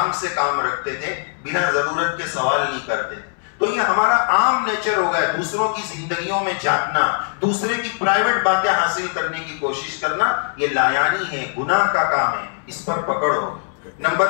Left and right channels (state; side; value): silent; right; 64 dB below the other